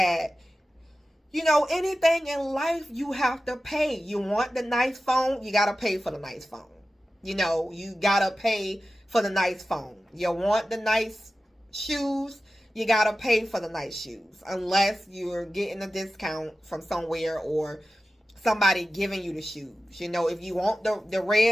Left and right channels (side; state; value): both; normal; correlation 0.94